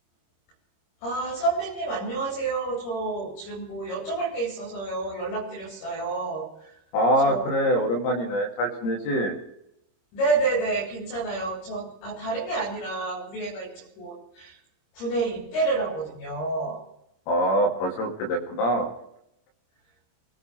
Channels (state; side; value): late; right; 26 ms